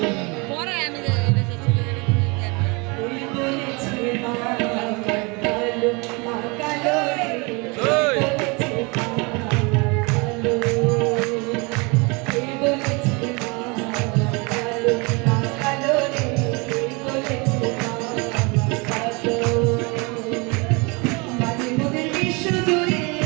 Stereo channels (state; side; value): quieter; left; 29.1 dB